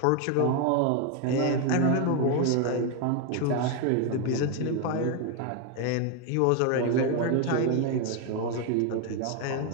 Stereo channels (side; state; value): both; different; correlation 0.01